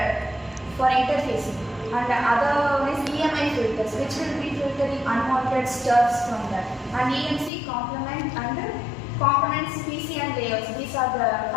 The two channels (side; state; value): right; drops out; at 7.5 s